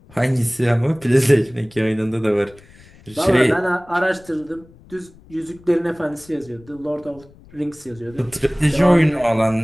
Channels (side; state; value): left; noise; rumble, 25 dB below the sound